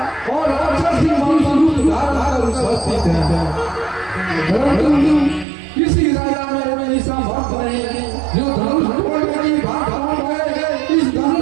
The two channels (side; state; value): left; drops out; at 5.5 s